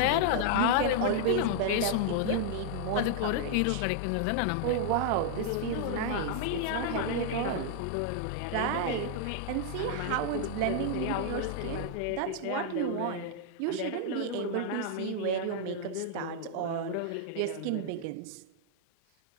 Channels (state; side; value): different; both; correlation 0.00